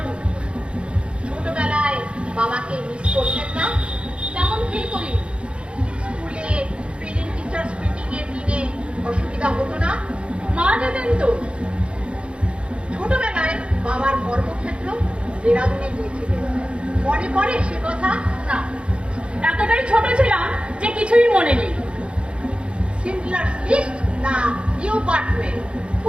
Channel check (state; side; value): late; left; 0.057 ms